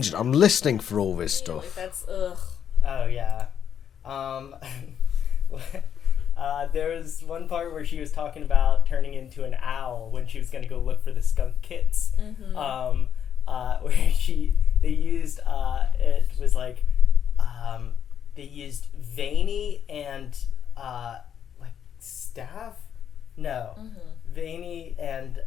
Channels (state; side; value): quieter; right; 8.6 dB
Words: I'm listening for all this stuff. Like that's ugh. Oh yeah. There was one part where she was talking about turning into an owl when she was going to go look for the skunk kits. Mm-hmm. Where they used it was like they used veiny and like staff. No, veiny and